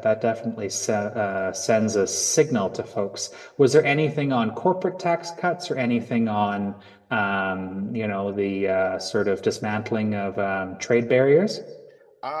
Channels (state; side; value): identical; both; correlation 1.00